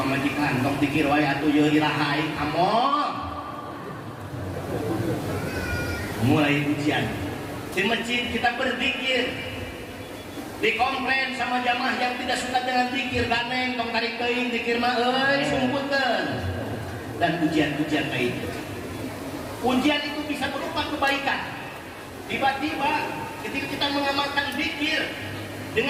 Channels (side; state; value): both; identical; correlation 1.00